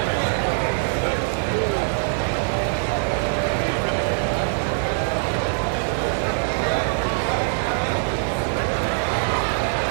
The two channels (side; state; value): left; silent; digital silence